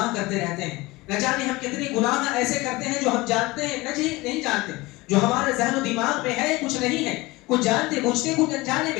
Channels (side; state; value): right; quieter; 21.5 dB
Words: کرتے رہتے ہیں، نہ جانے ہم کتنے گناہ ایسے کرتے ہیں جو ہم جانتے ہیں نہیں جانتے، جو ہمارے ذہن و دماغ میں ہے کچھ نہیں ہے، کچھ جانتے بوجھتے کچھ انجانے